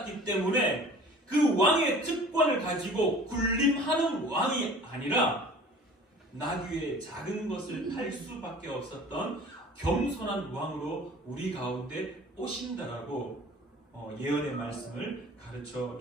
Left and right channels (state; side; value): normal; both; correlation 0.46